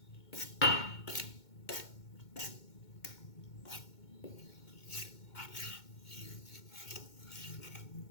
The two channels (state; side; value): late; right; 2.2 ms